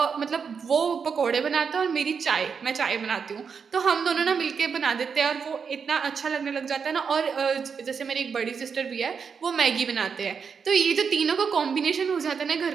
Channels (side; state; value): left; quieter; 6.1 dB